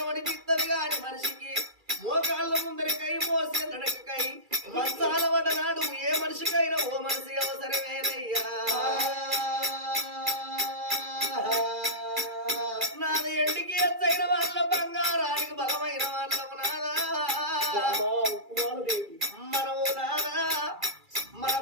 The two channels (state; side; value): late; left; 2.3 ms